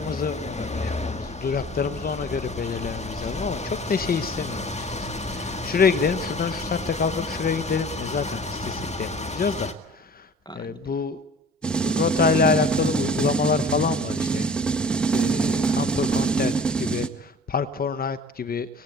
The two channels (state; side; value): normal; both; correlation 0.44